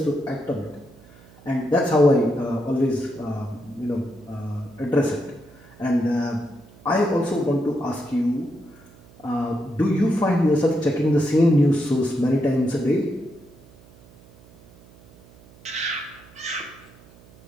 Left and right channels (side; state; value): right; noise; hum, 25 dB below the sound